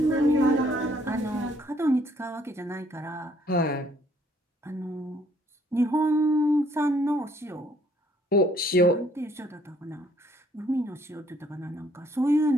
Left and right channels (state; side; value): normal; both; correlation 0.64